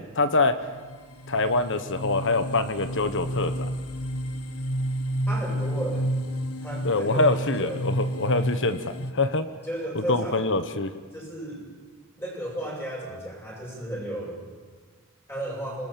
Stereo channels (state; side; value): normal; both; correlation 0.00